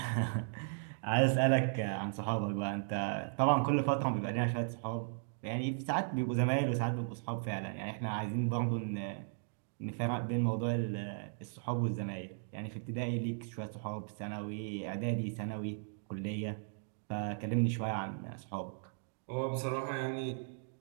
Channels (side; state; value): left; silent; digital silence